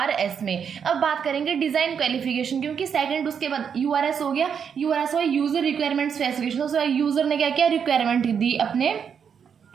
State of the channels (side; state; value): left; quieter; 7.2 dB